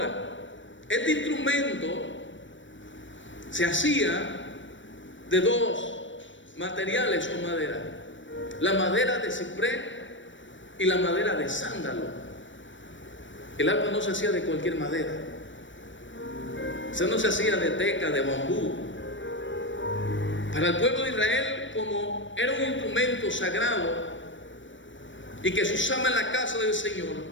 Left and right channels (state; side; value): late; right; 0.55 ms